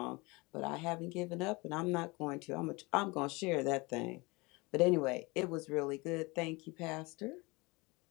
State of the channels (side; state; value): right; quieter; 25.2 dB